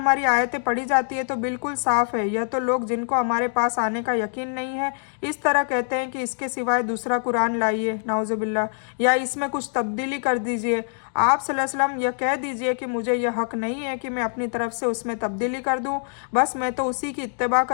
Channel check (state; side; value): silent; right; 62 dB below the other